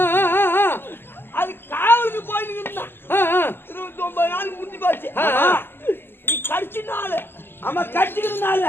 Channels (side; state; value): right; late; 0.10 ms